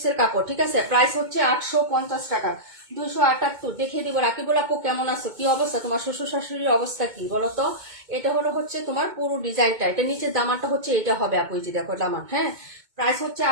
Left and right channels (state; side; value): late; left; 2.2 ms